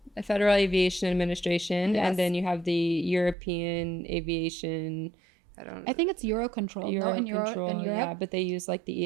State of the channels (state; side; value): drops out; left; at 3.4 s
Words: Aviation Administration, yes. and then you have the European Aviation. I think it's Eurocontrol. Eurocontrol, yeah, but they use like